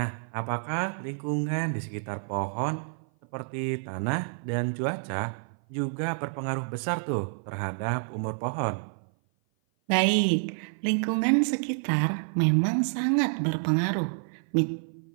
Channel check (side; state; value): left; silent; 55 dB below the other